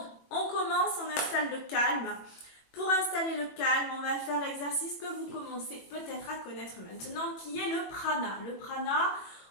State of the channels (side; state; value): right; late; 21 ms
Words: on commence, on installe le calme. Pour installer le calme, on va faire l'exercice que vous commencez peut-être à connaître maintenant, qui est le prana. Le prana,